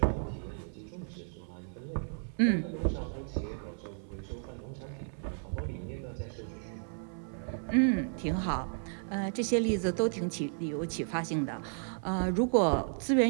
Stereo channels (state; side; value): silent; left; 56 dB below the other